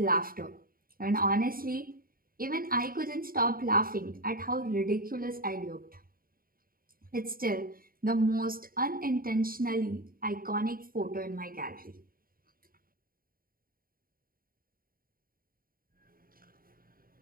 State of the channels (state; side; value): late; left; 0.42 ms